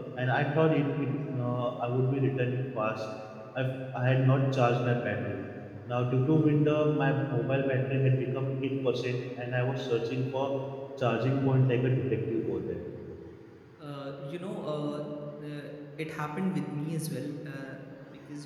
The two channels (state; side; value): identical; both; correlation 1.00